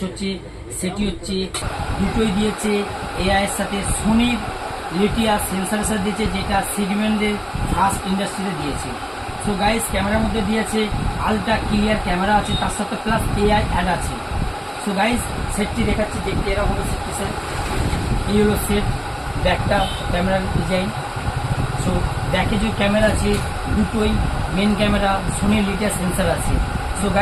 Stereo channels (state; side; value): identical; both; correlation 1.00